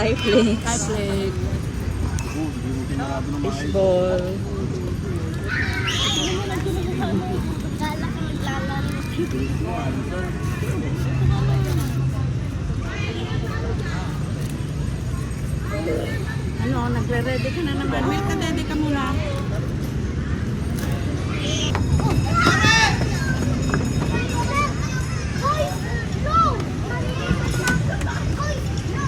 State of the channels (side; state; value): both; identical; correlation 1.00